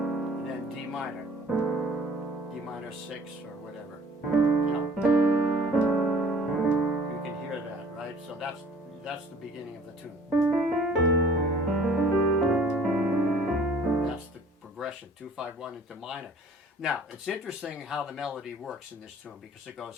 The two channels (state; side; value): normal; both; correlation 0.52